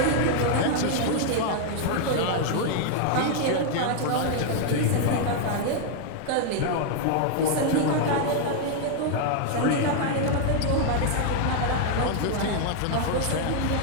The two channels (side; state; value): both; different; correlation 0.00